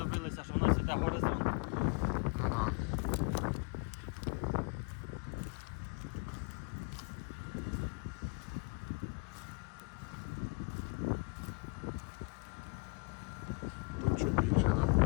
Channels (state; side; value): quieter; right; 30.8 dB